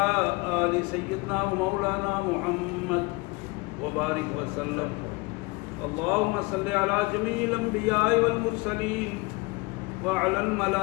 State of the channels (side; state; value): right; quieter; 25.6 dB